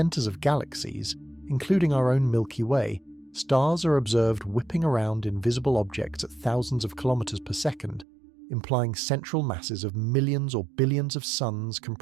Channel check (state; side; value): drops out; left; at 8.1 s